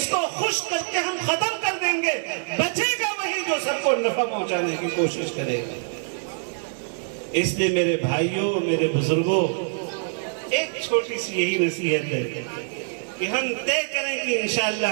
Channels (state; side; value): silent; left; digital silence